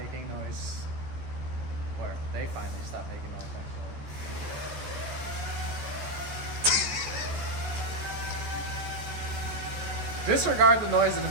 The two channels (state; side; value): late; left; 14 ms